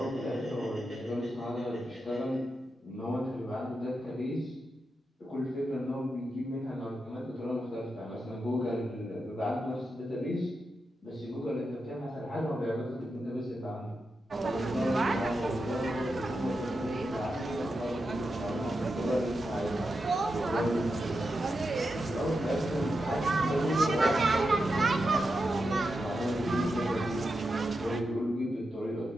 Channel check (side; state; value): both; normal; correlation 0.88